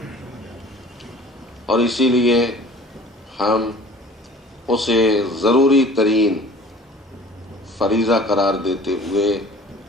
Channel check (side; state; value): both; normal; correlation 0.47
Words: اور اسی لیے ہم اسے ضروری ترین فریضہ قرار دیتے ہوئے